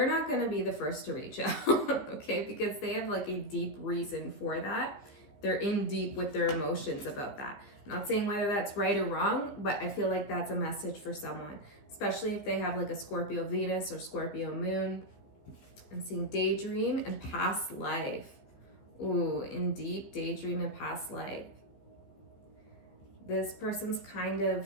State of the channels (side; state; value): right; late; 15 ms